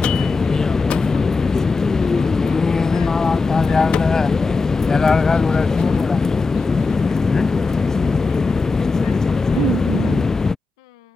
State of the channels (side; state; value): right; quieter; 4.0 dB